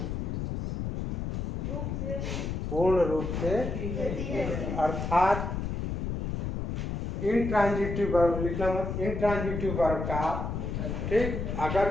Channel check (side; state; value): left; noise; rumble, 3 dB below the sound